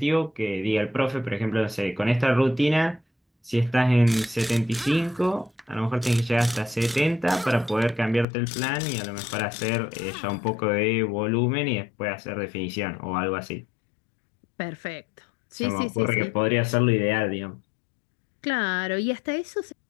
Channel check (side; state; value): right; drops out; at 8.2 s